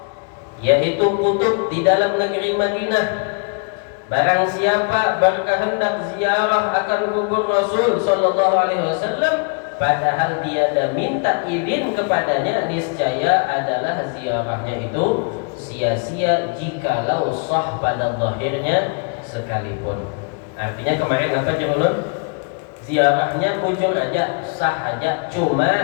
yaitu kutub di dalam negeri Madinah. Barang siapa berkehendak ziarah akan kubur Rasul sallallahu alaihi wasallam, padahal dia dah minta izin kepadanya, niscaya adalah ziarahnya itu sia-sia jikalau sah pada zahirnya sekalipun. Artinya kemarin apa Jumulun? Ziarahnya bujur aja, sah aja,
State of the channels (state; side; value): quieter; right; 37.6 dB